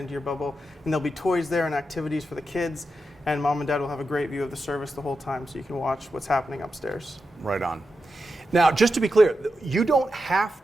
your bubble. And there'll be toys there and activities for the kids. And mom and dad will have a great view of the service the whole time, so you can watch what's happening upstairs. Right on. Now, just to be clear, you don't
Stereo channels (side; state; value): both; normal; correlation 0.88